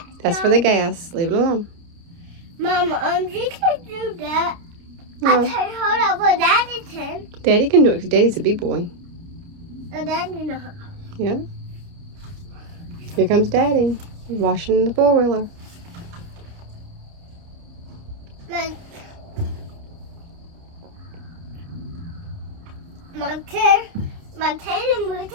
That's for the gas. Leave it alone. Mom, you can't do that. No. I can hold up what Daddy can. Daddy can do it because Daddy's a big boy. So Daddy knows. Yeah. Here comes Daddy. He's washing the four-wheeler. My tail moved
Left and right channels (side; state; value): left; late; 29 ms